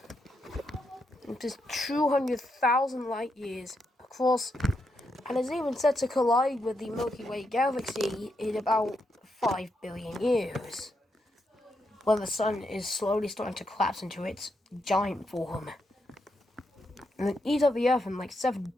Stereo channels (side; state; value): both; normal; correlation 0.82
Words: Which is 200,000 light years across, and is even set to collide with the Milky Way Galaxy in about 5 billion years, when the sun is slowly starting to collapse into its giant form, and then eat up the Earth in like 7